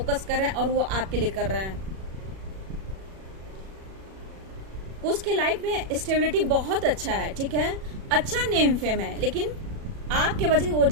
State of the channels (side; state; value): left; late; 37 ms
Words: कर रहे हैं और वो आपके लिए कर रहे हैं। कुछ के लाइफ में स्टेबिलिटी बहुत अच्छा है, ठीक है, अच्छा नेम फेम है, लेकिन आपके वजह से वो